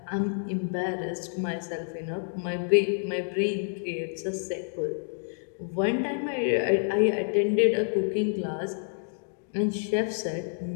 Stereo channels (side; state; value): right; silent; digital silence